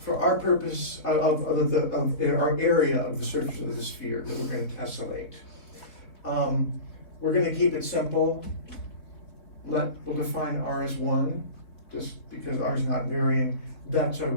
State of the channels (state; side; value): late; right; 4.1 ms